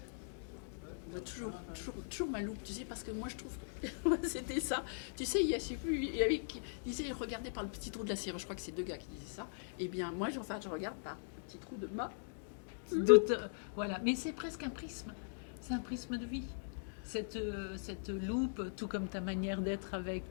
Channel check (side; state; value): right; silent; digital silence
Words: toujours ma loupe, tu sais, parce que moi, je trouve que c'était ça. Tu sais, il y avait qui disait, regardez par le petit trou de la serrure. Je crois que c'est 2 gars qui disaient ça. Eh bien, moi, je regarde par le petit trou de ma loupe. Voilà, mais c'est presque un prisme. C'est un prisme de vie. Cette loupe, tout comme ta manière d'être